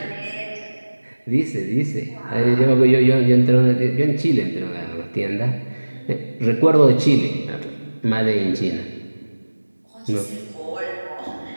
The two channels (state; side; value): inverted; both; correlation -1.00